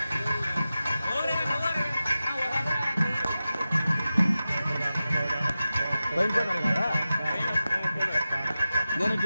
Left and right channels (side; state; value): both; inverted; correlation -0.94